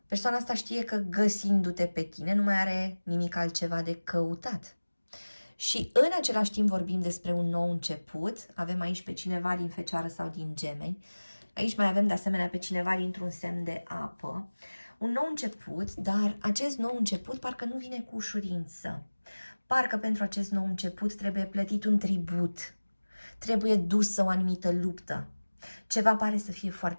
Persoana asta știe că găsindu-te pe tine nu mai are nimic altceva de căutat. Și în același timp vorbim despre un nou început. Avem aici pe cineva din Fecioară sau din Gemeni. Aici mai avem de asemenea pe cineva dintr-un semn de apă. Un nou început, dar acest nou început parcă nu vine cu ușurință. Parcă pentru acest nou început trebuie plătit un tribut. Trebuie dusă o anumită luptă. Ceva pare să fie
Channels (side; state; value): both; inverted; correlation -1.00